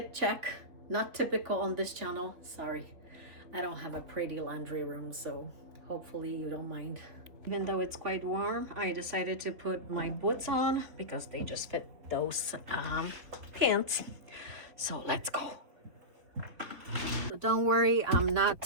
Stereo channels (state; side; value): late; left; 3.5 ms